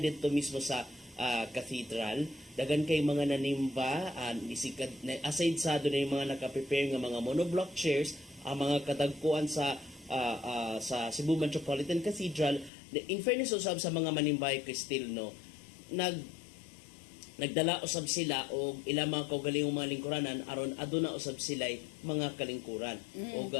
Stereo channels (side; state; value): right; drops out; at 12.7 s